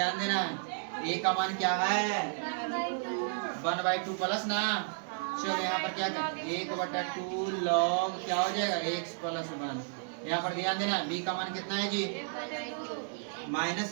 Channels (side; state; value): left; silent; digital silence